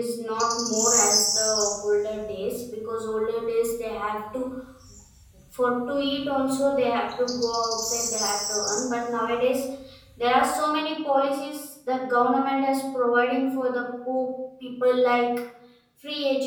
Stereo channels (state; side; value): identical; both; correlation 1.00